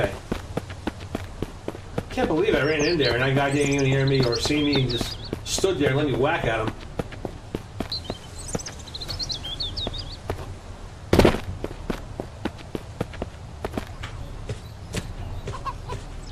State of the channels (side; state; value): both; identical; correlation 1.00